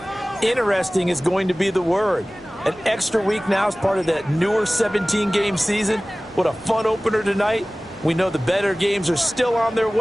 interesting is going to be the word. An extra week now as part of that newer 17-game season. What a fun opener tonight. We know the better games are still on their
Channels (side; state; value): both; normal; correlation 0.98